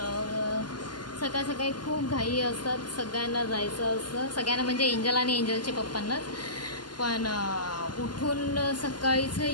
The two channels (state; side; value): late; right; 0.71 ms